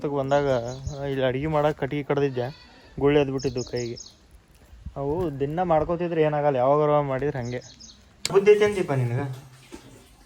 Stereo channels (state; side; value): identical; both; correlation 1.00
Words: ಬಂದಾಗ ಇಲ್ಲಿ ಅಡುಗೆ ಮಾಡೋಕೆ ಕಟ್ಟಿಗೆ ಕಡ್ದಿದ್ದೆ, ಗುಳ್ಳಿ ಎದ್ದು ಬಿಟ್ಟಿದ್ದು ಕೈಗೆ. ಅವು ದಿನ ಮಾಡ್ಕೋತಿದ್ರೆ ಏನಾಗಲ್ಲ, ಯಾವಾಗಾರ ಮಾಡಿದ್ರೆ ಹಾಗೆ. ಬುದ್ಧಿ ಐತೆ ಅಂತೀಪ ನಿನಗೆ?